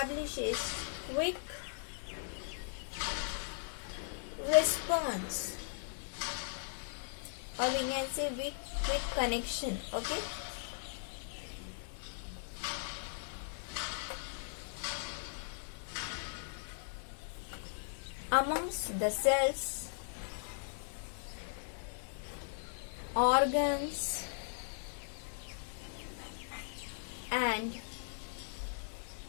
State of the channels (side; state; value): right; silent; digital silence